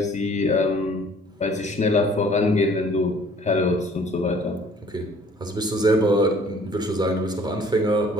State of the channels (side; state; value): both; normal; correlation 0.55